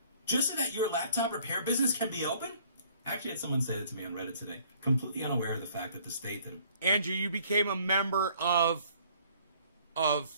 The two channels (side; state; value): both; inverted; correlation -0.58